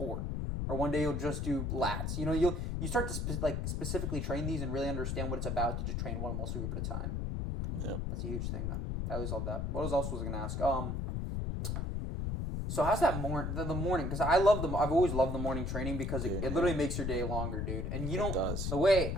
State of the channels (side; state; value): left; noise; rumble, 1 dB below the sound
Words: Or one day you'll just do lats. You know, you start to specifically train these and really understand what it's about to just train one muscle group at a time. Yeah, that's a huge thing, man. I always love that. What else was I gonna ask? So how's that the morning? Because I've always loved the morning training because Dude, it literally makes your day longer, dude. And you don't. does. The way